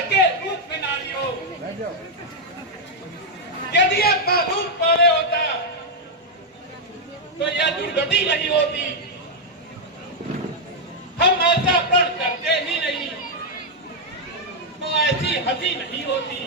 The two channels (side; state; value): both; normal; correlation -0.02